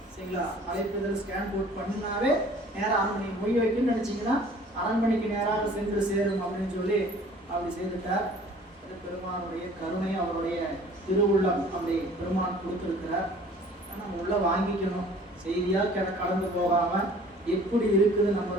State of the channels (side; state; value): both; normal; correlation 0.50